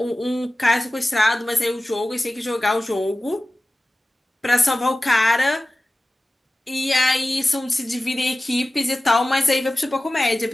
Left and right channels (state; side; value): normal; both; correlation 0.96